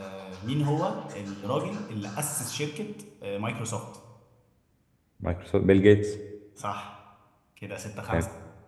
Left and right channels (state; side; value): identical; both; correlation 1.00